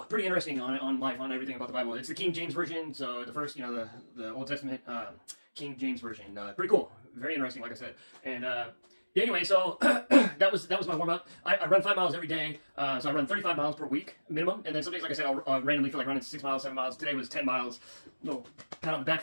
pretty interesting on life, on everything about the Bible. It's the King James version, so the first, you know, the Old Testament King James version. Pretty cool, very interesting, like I said. And yeah, anyway, so that was my warm up. I run 5 miles every day, so I run 35 miles per week minimum. And then some days, like I said, I'll randomly feel like running 6 miles, 7 miles. Today was 10 miles. No pat on the back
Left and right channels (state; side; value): inverted; both; correlation -1.00